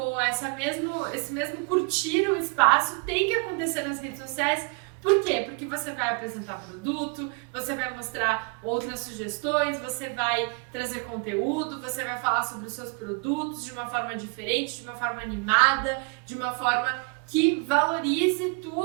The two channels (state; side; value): quieter; left; 33.9 dB